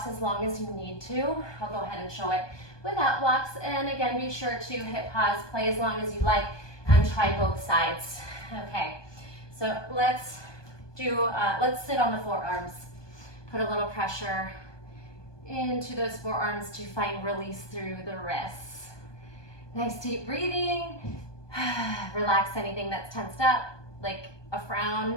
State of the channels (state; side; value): late; right; 1.2 ms